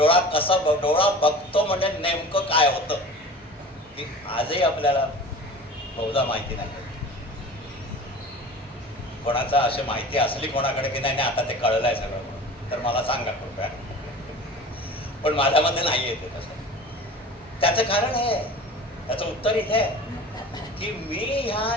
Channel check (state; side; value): normal; both; correlation 0.39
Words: बघतो म्हणजे नेमकं काय होतं ती आजही आपल्याला बहुधा माहिती नाही. कोणाचा अशी माहिती असली कोणाकडे की नाही आता ते कळलंय सगळं तर मला सांगा कृपया. पण माझ्यामध्ये नाही येते तसं. त्याचं कारण हे त्याचं उत्तर इथे आहे की मी ह्या